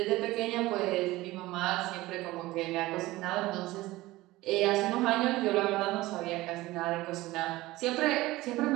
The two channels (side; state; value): left; quieter; 18.6 dB